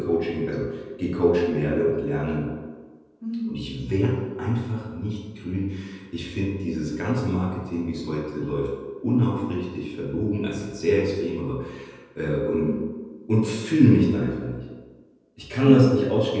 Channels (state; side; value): identical; both; correlation 1.00